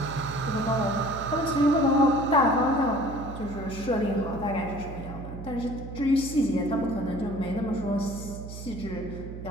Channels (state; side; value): noise; right; hum, 10 dB below the sound